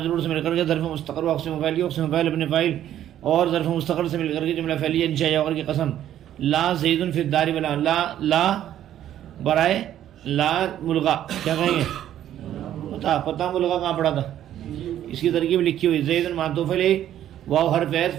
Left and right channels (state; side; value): quieter; left; 11.5 dB